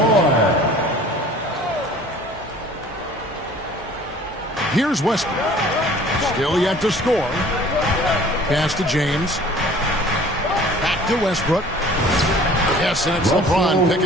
Here's Westbrook. Still yet to score. Pass to James. Back to Westbrook. Yes, and it's LeBron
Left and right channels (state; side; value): normal; both; correlation 0.49